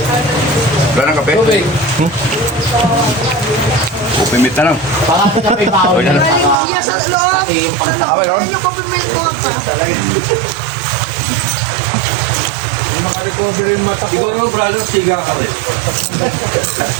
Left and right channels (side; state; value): left; drops out; at 6.6 s